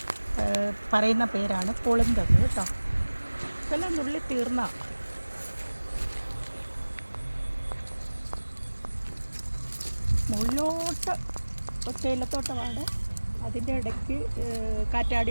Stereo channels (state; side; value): inverted; both; correlation -1.00